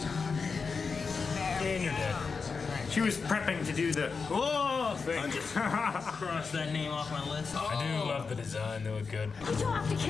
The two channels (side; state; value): right; quieter; 5.0 dB